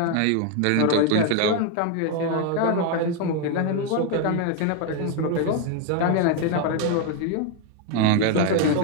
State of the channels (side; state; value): both; different; correlation 0.01